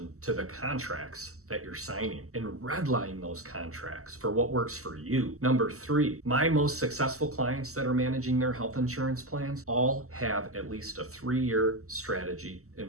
to the contracts that you're signing and redline those contracts for what works for you. Number 3, my most successful clients that are managing their health insurance plans all have at least a 3-year strategy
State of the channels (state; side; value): late; left; 0.64 ms